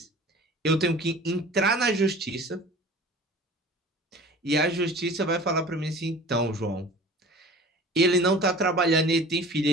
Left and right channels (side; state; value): both; normal; correlation 0.42